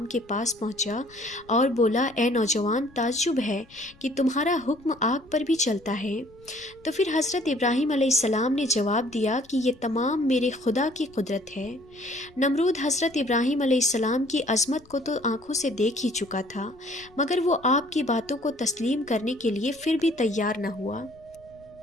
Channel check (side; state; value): left; noise; rumble, 27 dB below the sound